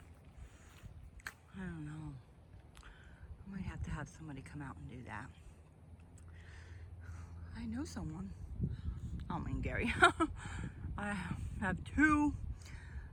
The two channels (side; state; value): both; identical; correlation 1.00